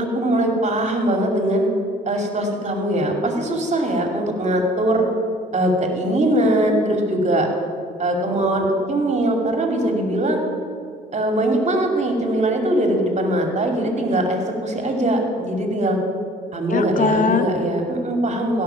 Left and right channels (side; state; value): both; normal; correlation 0.52